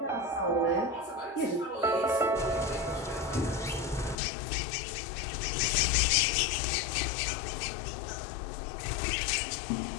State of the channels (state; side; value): drops out; right; at 4.2 s